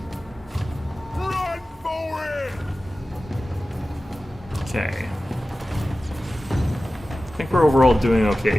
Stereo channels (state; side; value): normal; both; correlation 0.96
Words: Run for it! Okay. I think we're overall doing